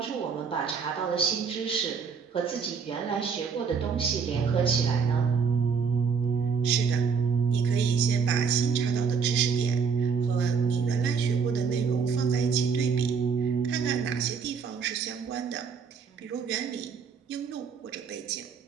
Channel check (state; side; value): quieter; left; 5.9 dB